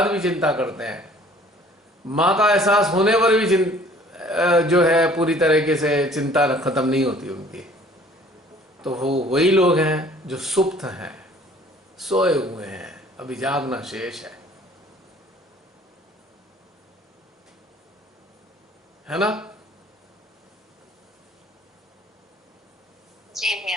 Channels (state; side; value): normal; both; correlation 0.53